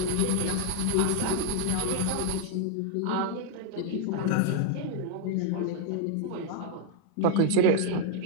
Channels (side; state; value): both; different; correlation 0.00